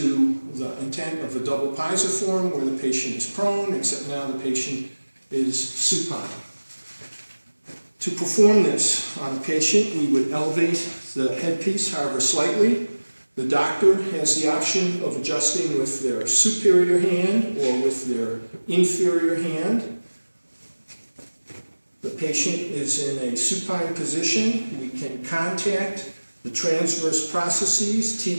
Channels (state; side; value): inverted; both; correlation -1.00